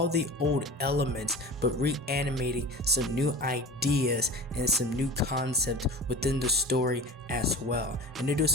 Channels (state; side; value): normal; both; correlation 0.35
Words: the old elements but reanimating some new ideas and some new concepts within the story as well. And they do